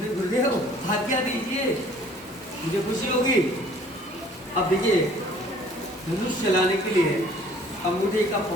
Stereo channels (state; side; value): normal; both; correlation 0.54